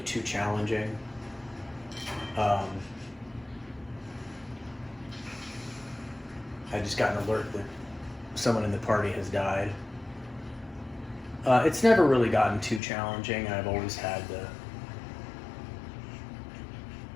challenging. I just got an alert that someone in the party has died. It's never really gotten too challenging. I've always had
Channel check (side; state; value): right; drops out; at 12.8 s